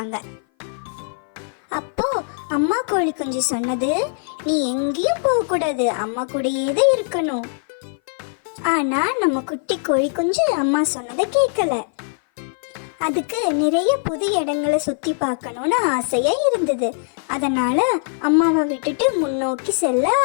அப்போ அம்மா கோழி குஞ்சு சொன்னது, நீ எங்கேயும் போக கூடாது, அம்மா கூடயே தான் இருக்கணும். ஆனா நம்ம குட்டி கோழி குஞ்சு அம்மா சொன்னதை கேட்கல. அதுக்கு நிறைய புது இடங்களை சுத்தி பார்க்கணும்னு ஆசையா இருந்தது. அதனால அம்மாவை விட்டுட்டு முன்னோக்கி செல்ல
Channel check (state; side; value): silent; right; 58 dB below the other